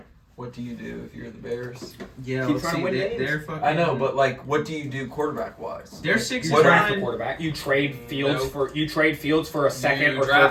What do you do if you're the Bears? Yeah, Keep let's trying to see. win They, games. they're fucking. I know, but like, what do you do quarterback wise? they're 6 You and draft a 9. quarterback. You trade Fields Nope. for a second You or draft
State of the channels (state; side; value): identical; both; correlation 1.00